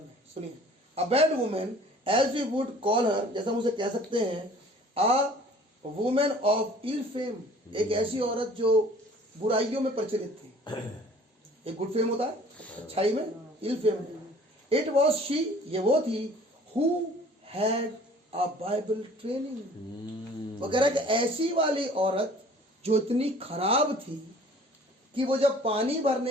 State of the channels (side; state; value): both; normal; correlation 0.51